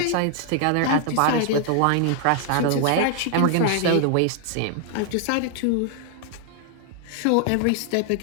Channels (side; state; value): both; different; correlation 0.00